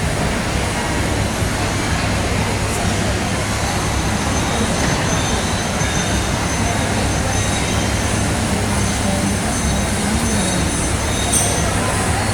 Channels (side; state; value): both; identical; correlation 1.00